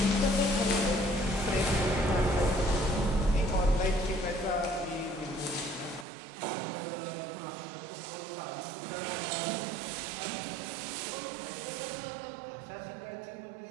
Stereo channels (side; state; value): left; drops out; at 6.1 s